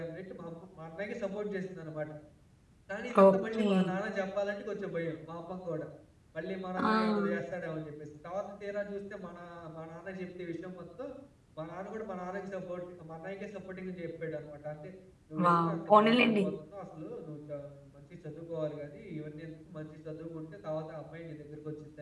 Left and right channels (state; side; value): identical; both; correlation 1.00